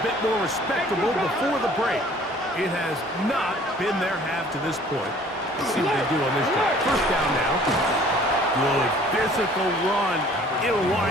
bit more respectable before the break. It has not been their half to this point. Let's see what they do on this drive. First down now. Good physical run. It'll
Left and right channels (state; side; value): normal; both; correlation 0.53